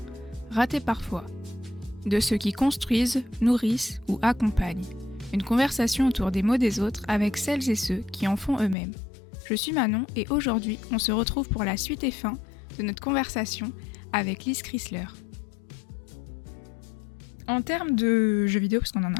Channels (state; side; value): drops out; right; at 8.8 s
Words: ratés parfois, de ceux qui construisent, nourrissent ou accompagnent. Une conversation autour des mots des autres avec celles et ceux qui en font eux-mêmes. Je suis Manon et aujourd'hui, on se retrouve pour la suite et fin de notre conversation avec Lise Chrysler. En termes de jeux vidéo, parce